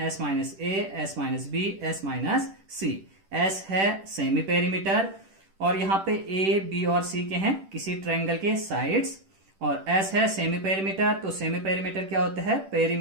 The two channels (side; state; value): left; late; 10 ms